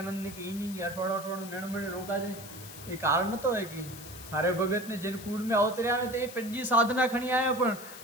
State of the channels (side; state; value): left; noise; hiss, 14 dB below the sound